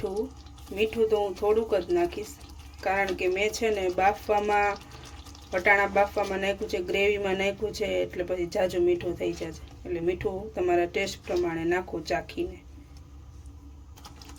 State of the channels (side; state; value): both; identical; correlation 1.00